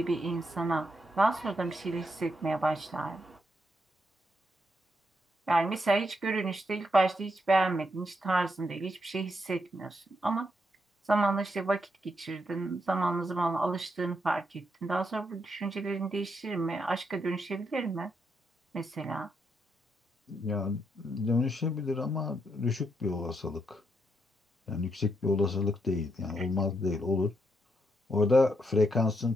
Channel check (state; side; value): normal; both; correlation 0.79